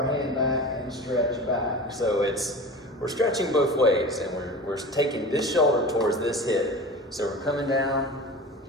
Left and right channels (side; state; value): both; normal; correlation 0.34